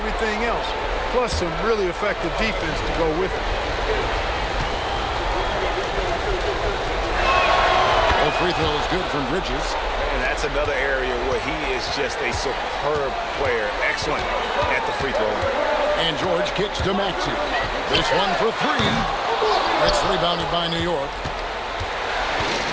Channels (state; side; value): identical; both; correlation 1.00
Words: else, plus some really effective defense to go with it. Well, free throw is good from Bridges. And that's another area where he is just a superb player. Excellent at the free throw. And George kicks to Maxey. This one for 3. It's rebounded by New York.